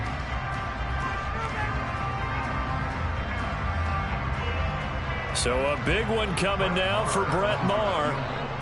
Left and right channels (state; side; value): identical; both; correlation 1.00